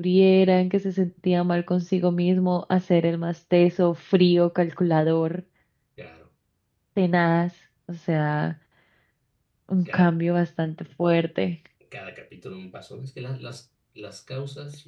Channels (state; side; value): identical; both; correlation 1.00